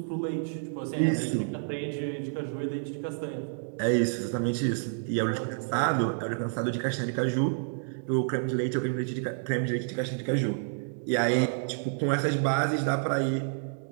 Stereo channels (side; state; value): left; silent; digital silence